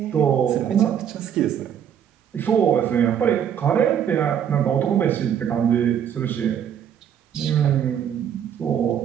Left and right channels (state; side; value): quieter; left; 9.0 dB